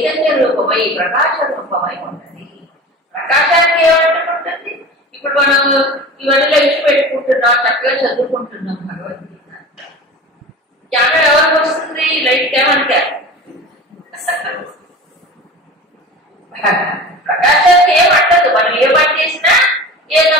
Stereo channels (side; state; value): both; normal; correlation 0.35